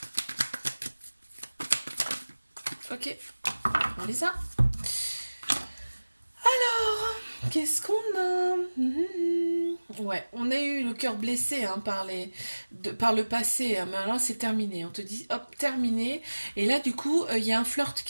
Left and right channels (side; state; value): both; inverted; correlation -1.00